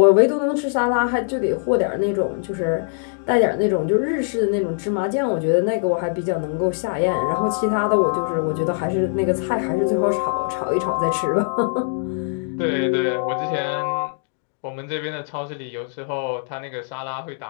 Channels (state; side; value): silent; right; 64 dB below the other